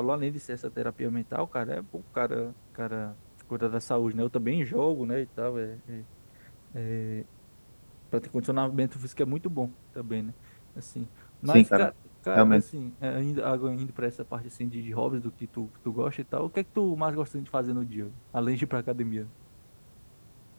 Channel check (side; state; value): both; inverted; correlation -1.00